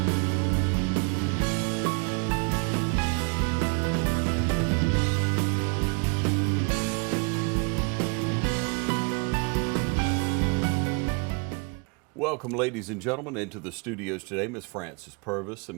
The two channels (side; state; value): left; quieter; 36.9 dB